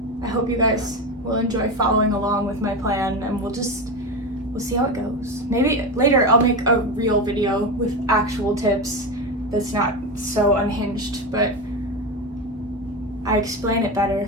I hope you guys will enjoy following along with my plan, and we'll see how it goes. Maybe later I'll make a real video with actual tips that's not so unhinged, but I explain it better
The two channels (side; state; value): both; normal; correlation 0.19